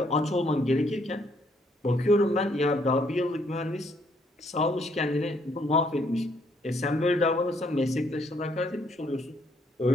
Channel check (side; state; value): both; normal; correlation 0.69